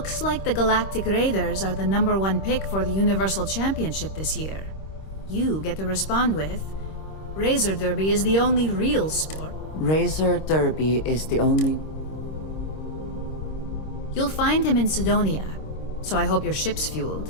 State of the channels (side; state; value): right; late; 26 ms